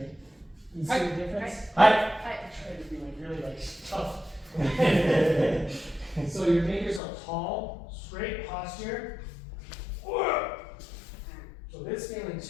You see the difference? Hi. Hi. Try to be like really like tough. So your fingers are tall, straight posture. So this feeling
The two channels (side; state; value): right; drops out; at 7.0 s